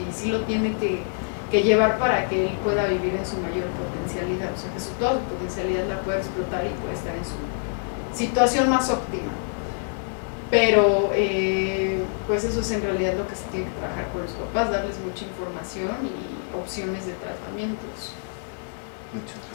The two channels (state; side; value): silent; right; digital silence